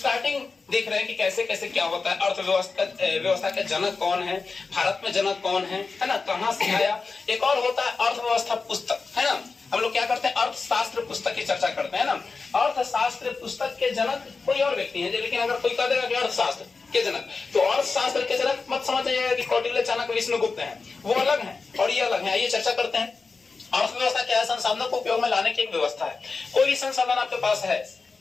देख रहे हैं कि कैसे कैसे क्या होता है। अर्थव्यवस्था के जनक कौन है, भारत में जनक कौन है ना, कहां से आया। एक और होता है अर्थव्यवस्था पुस्तक, है ना। हम लोग क्या करते हैं, अर्थशास्त्र पुस्तक की चर्चा करते हैं ना। अर्थशास्त्र पुस्तक के जनक कोई और व्यक्ति है, लेकिन अगर कोई कह देगा कि अर्थशास्त्र के जनक, तो अर्थशास्त्र के जनक मत समझ जाइएगा कि कौटिल्य, चाणक्य, विष्णुगुप्त हैं, वो अलग हैं और ये अलग है। आइए चर्चा करते हैं। अर्थव्यवस्था क्या है? संसाधनों को उपयोग में लाने की एक व्यवस्था है। कोई भी संसाधन आपके पास है,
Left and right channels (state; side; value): quieter; right; 4.4 dB